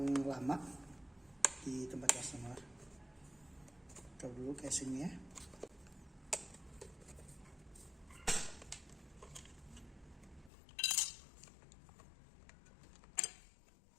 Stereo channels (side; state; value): right; drops out; at 10.5 s